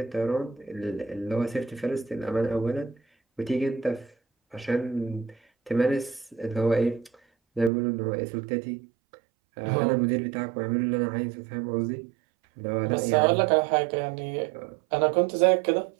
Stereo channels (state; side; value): drops out; left; at 7.7 s